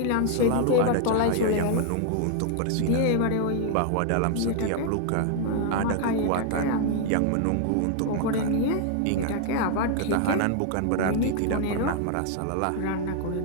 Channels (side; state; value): both; different; correlation 0.00